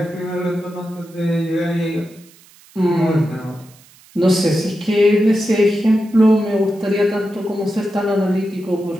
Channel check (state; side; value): noise; right; hiss, 26 dB below the sound